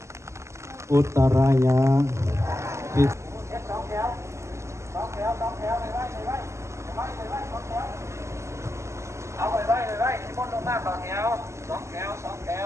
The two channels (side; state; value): left; late; 0.13 ms